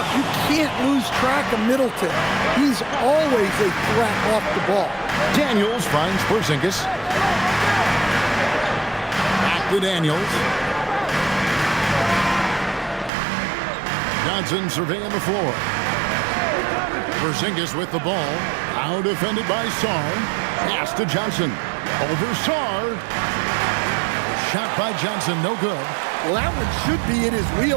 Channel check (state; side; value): drops out; left; at 13.1 s